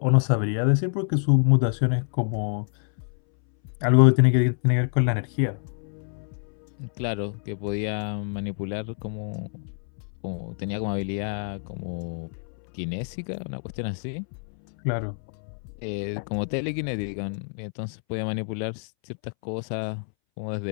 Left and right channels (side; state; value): right; silent; 61 dB below the other